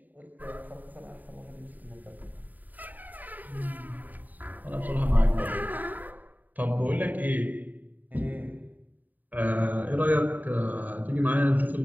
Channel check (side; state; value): left; late; 0.084 ms